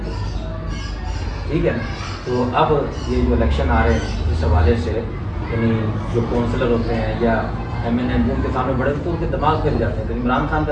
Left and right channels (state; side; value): identical; both; correlation 1.00